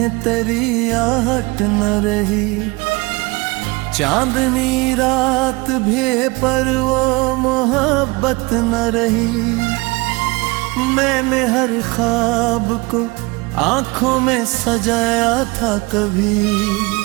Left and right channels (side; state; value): left; quieter; 25.1 dB